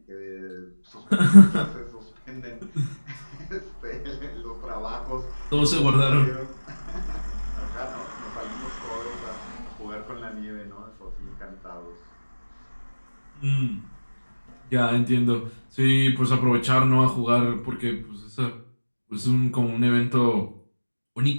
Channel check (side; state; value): both; inverted; correlation -1.00